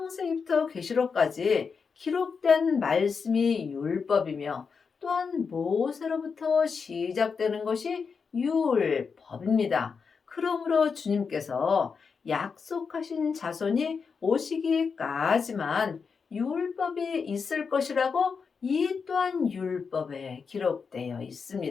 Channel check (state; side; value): quieter; right; 5.5 dB